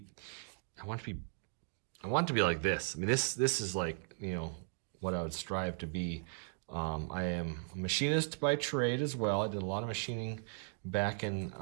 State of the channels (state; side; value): silent; left; digital silence